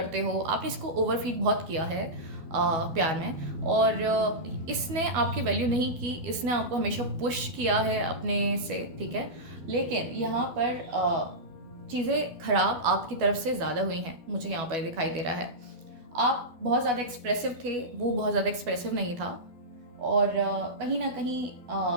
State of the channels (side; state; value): left; late; 12 ms